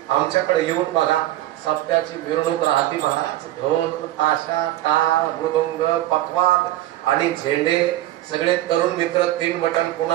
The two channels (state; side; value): quieter; left; 15.0 dB